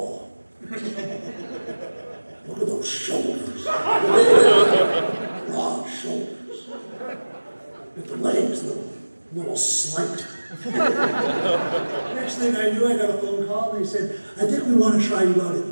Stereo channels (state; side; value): inverted; both; correlation -1.00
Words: look at those shoulders, broad shoulders, with the legs, little slight. Next thing I knew, I got a phone call, and they said, I think we want to try you out